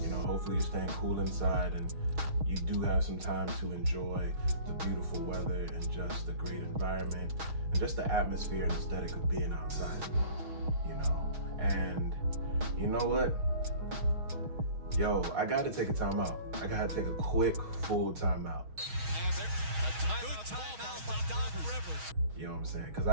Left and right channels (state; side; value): late; left; 6.3 ms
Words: Hopefully you're staying cool inside and you do have some time to enjoy the beautiful weather and just the great environment and just the atmosphere and aesthetic of being outside, And you know what? Yo, I gotta take a timeout. I gotta take a quick, full timeout. You know what I'm saying? Because